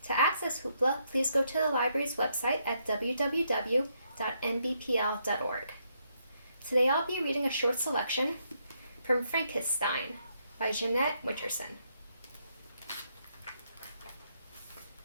To access Hoopla, please go to the library's website at www.nbpl.org. Today I'll be reading a short selection from Frankissstein by Jeanette Winterson.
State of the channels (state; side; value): inverted; both; correlation -0.76